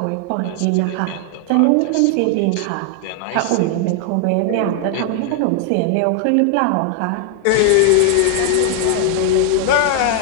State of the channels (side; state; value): both; different; correlation 0.00